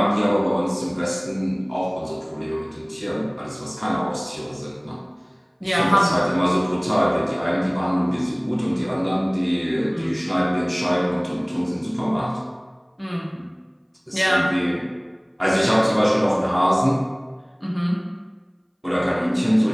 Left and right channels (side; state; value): both; identical; correlation 1.00